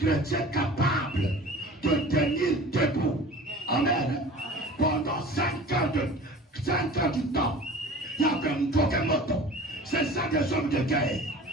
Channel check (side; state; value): both; normal; correlation 0.41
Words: capables de tenir debout. Amen. Pendant 5 heures du temps, il y avait un Pokémon. C'est ça des hommes de guerre.